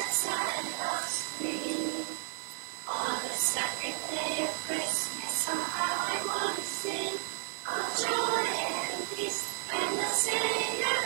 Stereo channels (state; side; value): silent; left; digital silence